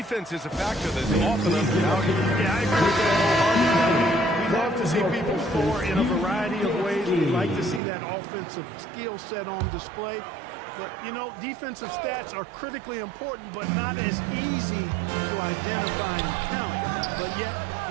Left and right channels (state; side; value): drops out; left; at 7.8 s